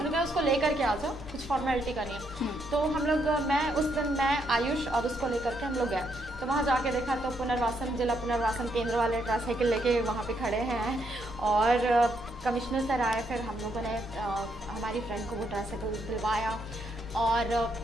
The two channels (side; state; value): both; normal; correlation 0.76